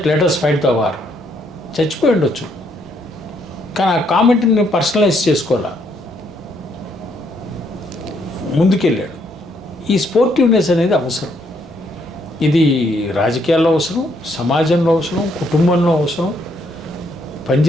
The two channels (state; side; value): normal; both; correlation 0.72